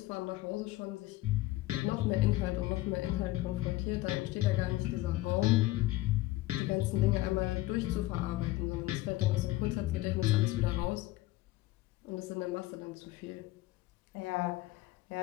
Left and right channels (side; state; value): right; quieter; 17.7 dB